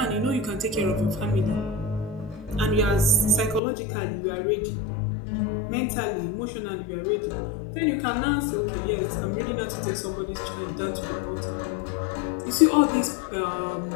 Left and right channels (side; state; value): right; drops out; at 3.6 s